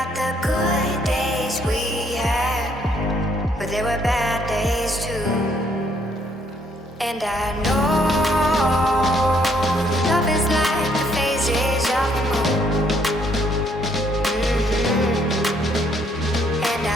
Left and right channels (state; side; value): normal; both; correlation 0.68